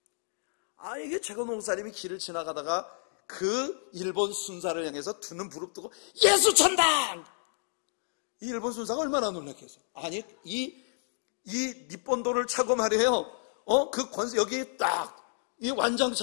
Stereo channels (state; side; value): silent; right; digital silence